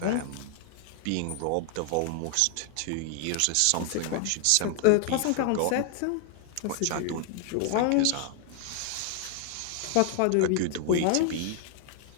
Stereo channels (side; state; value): both; different; correlation 0.00